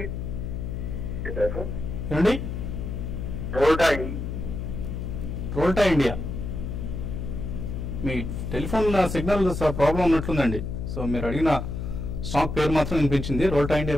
ఏమండి? రోల్టా ఇండియా. మీ టెలిఫోన్ సిగ్నల్ ప్రాబ్లం ఉన్నట్లుందండి. సో మీరు అడిగిన స్టాక్ పేరు మాత్రం వినిపించింది. రోల్టా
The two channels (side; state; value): left; noise; hum, 4 dB below the sound